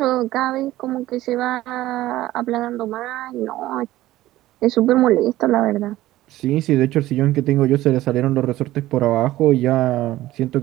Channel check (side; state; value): left; quieter; 15.8 dB